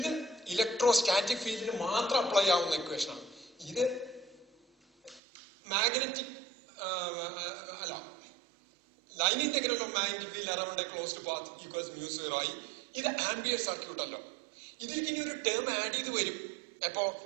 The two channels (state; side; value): drops out; left; at 5.2 s